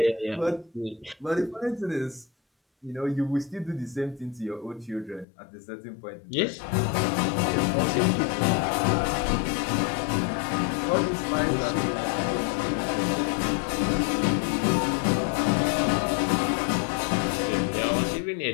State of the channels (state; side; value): drops out; right; at 5.2 s